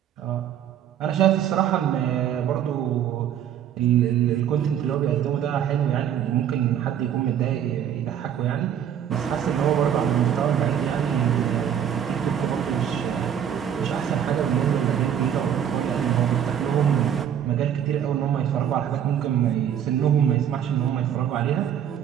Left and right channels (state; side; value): quieter; left; 9.4 dB